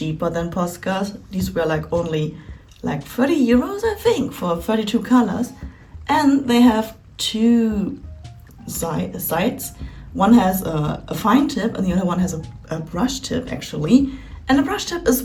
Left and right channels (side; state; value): both; identical; correlation 1.00